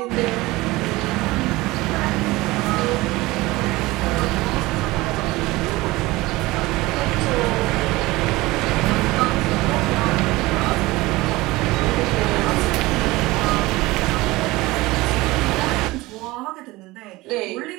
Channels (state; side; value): quieter; left; 20.4 dB